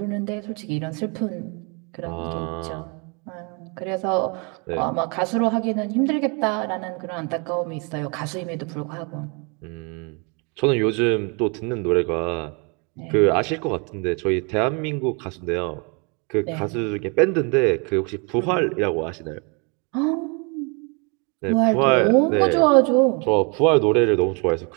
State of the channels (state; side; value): quieter; left; 33.5 dB